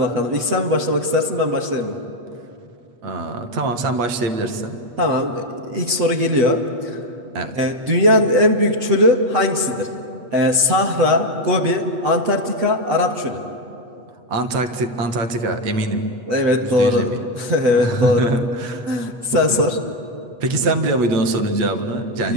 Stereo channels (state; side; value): late; left; 8.3 ms